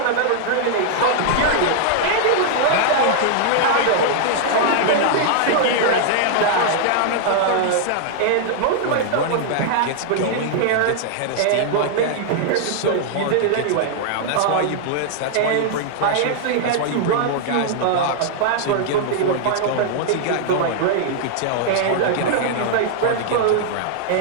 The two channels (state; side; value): different; both; correlation -0.01